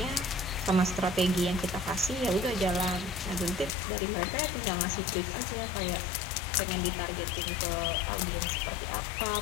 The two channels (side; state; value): right; drops out; at 3.7 s